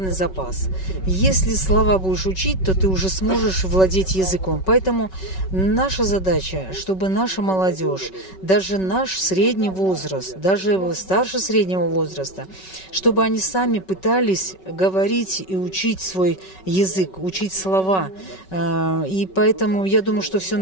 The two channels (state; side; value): late; right; 5.3 ms